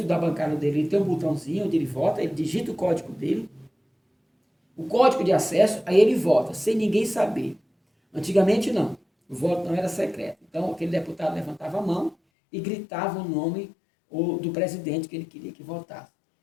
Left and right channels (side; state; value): right; drops out; at 12.2 s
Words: da bancada dele, ele tem um botãozinho onde ele vota, ele digita o código dele, o código de acesso, aí ele vota, sem ninguém saber. Antigamente, não. O voto não era secreto. Então, aquele deputado levantava a mão e gritava o nome do presidente que ele queria que votasse.